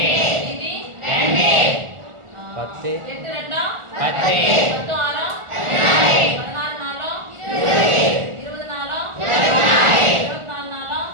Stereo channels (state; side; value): late; left; 1.4 ms